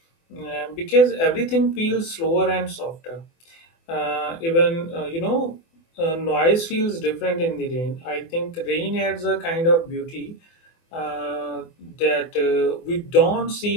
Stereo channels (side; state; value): right; late; 24 ms